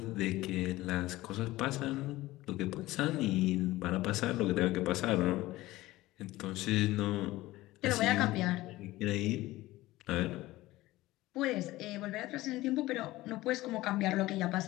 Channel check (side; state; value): right; quieter; 17.8 dB